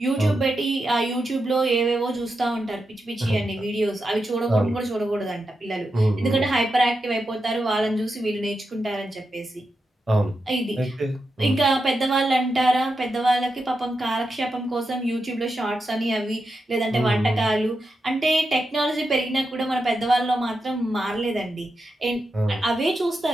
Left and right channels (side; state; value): both; normal; correlation 0.88